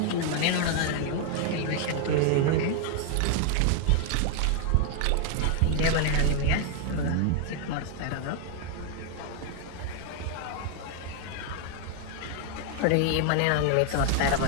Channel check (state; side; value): different; both; correlation 0.00